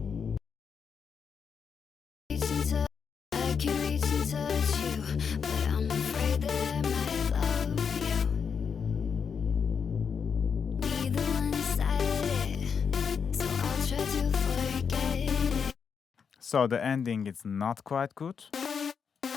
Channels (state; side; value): quieter; right; 6.5 dB